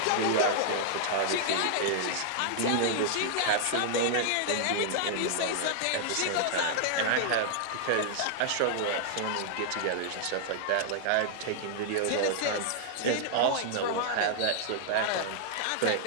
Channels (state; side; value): different; both; correlation -0.01